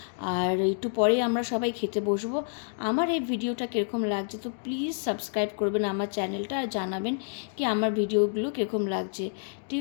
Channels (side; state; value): right; silent; digital silence